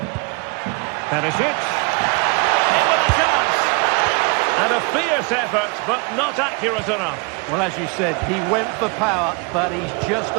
Perisic. In with a chance. And a fierce effort, but not accurate enough. Well, as you said, he went for power, but he's just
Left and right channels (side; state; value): left; quieter; 31.4 dB